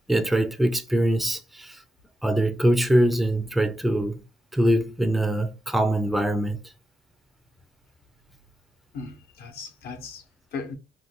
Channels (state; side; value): normal; both; correlation 0.91